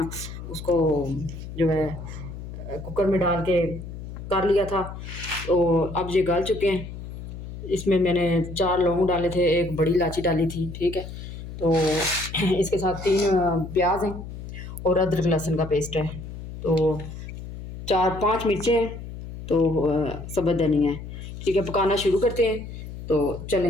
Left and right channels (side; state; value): left; noise; hum, 10 dB below the sound